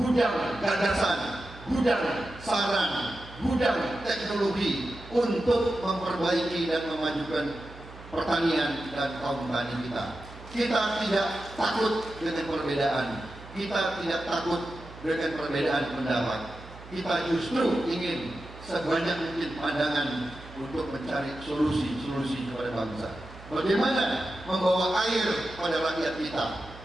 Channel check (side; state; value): right; noise; hum, 17 dB below the sound